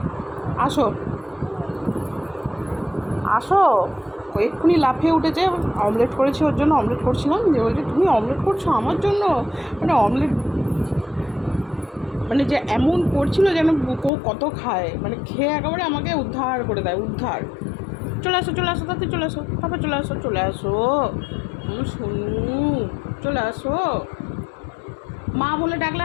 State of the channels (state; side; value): drops out; right; at 14.1 s